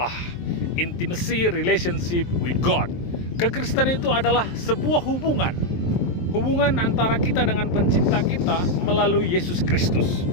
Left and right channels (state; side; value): late; right; 23 ms